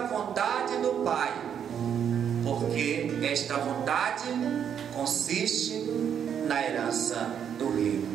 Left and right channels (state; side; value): quieter; left; 8.4 dB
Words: vontade do Pai, porque esta vontade consiste na herança do